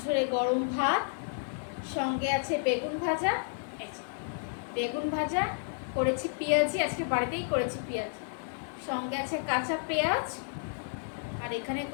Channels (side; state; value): right; silent; digital silence